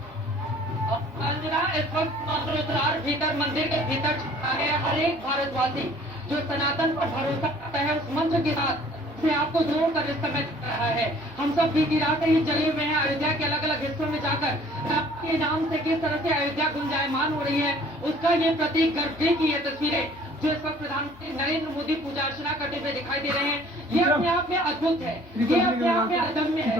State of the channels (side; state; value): both; normal; correlation 0.54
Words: इस वक्त मंत्रोद्धार भीतर मंदिर के भीतर छुपा है। हर एक भारतवासी जो सनातन पर भरोसा करता है उस मंत्र के साथ से आपको जोड़कर इस समय रहा है। हम सब बीती रात ही जले हुए हैं अयोध्या के अलग अलग हिस्सों में जाकर आपके नाम से किस तरह से अयोध्या गुंजायमान हो रही है उसका ये प्रतीक गर्भगृह की ये तस्वीरें जो इस वक्त प्रधानमंत्री नरेंद्र मोदी पूजा अर्चना करते हुए दिखाई दे रहे हैं। ये अपने आप में अद्भुत है, ये अपने आप में अदम्य है